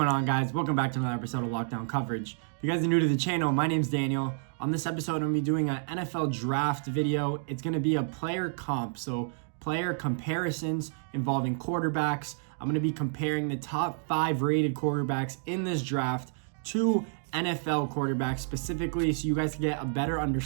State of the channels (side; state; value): left; silent; digital silence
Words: on, guys? Welcome back to another episode of Lockdown Coverage. If you guys are new to the channel, my name's Daniel. On this episode, I'm going to be doing an NFL draft video. It's going to be a player comp, so player comparisons involving quarterbacks. I'm going to be comparing the top 5 rated quarterbacks in this draft to NFL quarterbacks specifically, so you guys can get a better